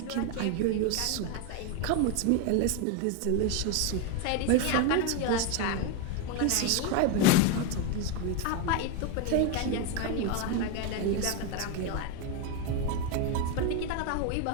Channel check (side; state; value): both; different; correlation 0.02